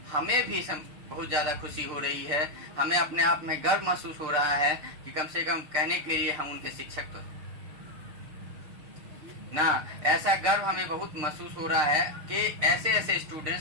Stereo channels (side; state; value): left; late; 6.7 ms